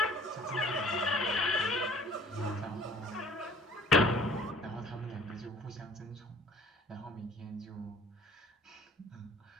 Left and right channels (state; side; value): normal; both; correlation 0.53